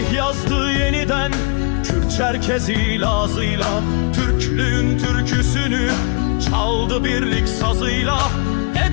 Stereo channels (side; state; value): right; quieter; 33.8 dB